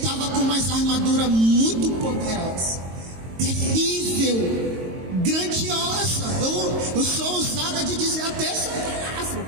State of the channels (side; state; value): left; late; 22 ms